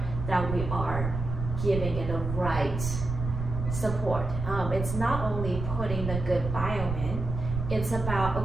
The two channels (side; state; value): right; noise; rumble, 5 dB below the sound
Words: that we are giving it the right support. It's not only putting the good biome in, it's about,